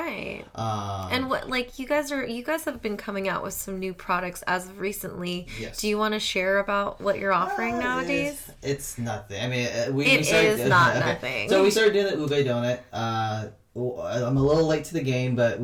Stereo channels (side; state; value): both; identical; correlation 1.00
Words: And what, like, you guys have been coming out with some new products as of recently. Yes. Do you want to share about what you're offering nowadays? It's nothing. I mean, it is not nothing. So we started doing the ube donut. I'm a little late to the game, but